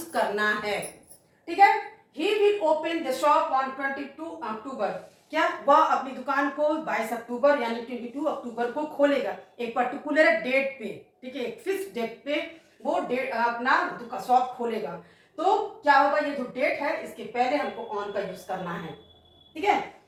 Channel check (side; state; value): both; identical; correlation 1.00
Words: करना है, ठीक है। He will open the shop on 22 अक्टूबर, क्या वह अपनी दुकान को 22 अक्टूबर यानी 22 अक्टूबर को खोलेगा, एक पर्टिकुलर डेट पे, ठीक है, एक फिक्स डेट पे वो डेट अपना शॉप खोलेगा। तो क्या होगा, ये जो डेट है इसके पहले हमको ऑन का यूज करना है, ठीक है।